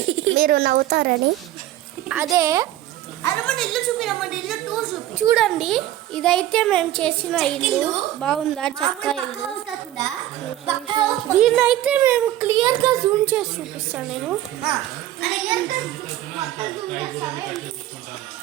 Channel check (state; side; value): quieter; left; 13.6 dB